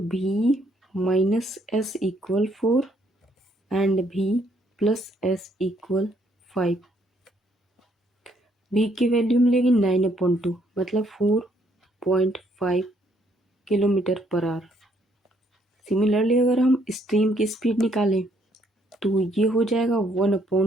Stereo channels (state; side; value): normal; both; correlation 0.69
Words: v minus S equal 4 and v plus S equal 5। v की वैल्यू मिलेगी 9/2, मतलब 4.5 किलोमीटर पर आवर। सिमिलरली अगर हम स्ट्रीम की स्पीड निकालें तो ये हो जाएगा